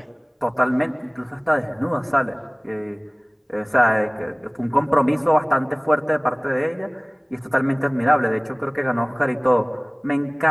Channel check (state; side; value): identical; both; correlation 1.00